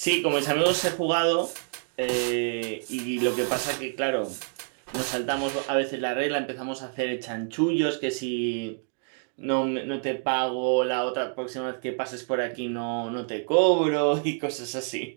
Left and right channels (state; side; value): silent; left; 60 dB below the other